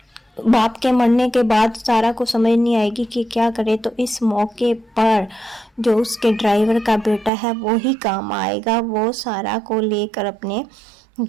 باپ کے مرنے کے بعد سارا کو سمجھ نہیں آئے گی کہ کیا کرے، تو اس موقع پر جو اس کے ڈرائیور کا بیٹا ہے وہی کام آئے گا۔ وہ سارا کو لے کر اپنے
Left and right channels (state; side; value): drops out; left; at 7.3 s